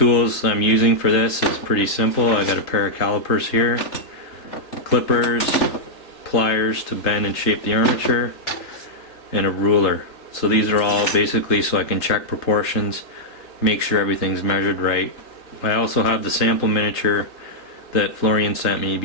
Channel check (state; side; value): late; right; 3.4 ms